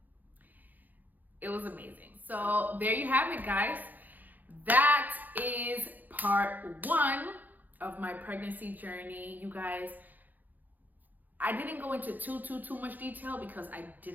it was amazing. So there you have it, guys. That is part 1 of my pregnancy journey. You guys, I didn't go into too much detail because I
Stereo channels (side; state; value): left; late; 0.084 ms